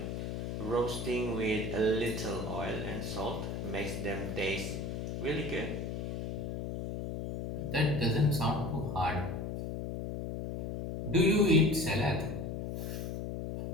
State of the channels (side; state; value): left; noise; hum, 4 dB below the sound